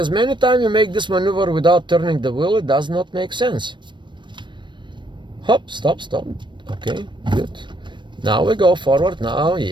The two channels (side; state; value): left; late; 0.22 ms